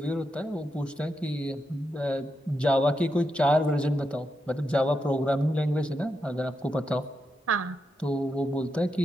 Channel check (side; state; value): both; normal; correlation 0.85